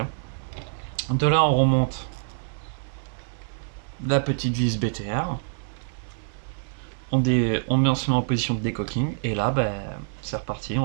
De là, on remonte la petite vis BTR. On met en position de décocking. Et là, ben, c'est reparti,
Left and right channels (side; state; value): left; silent; digital silence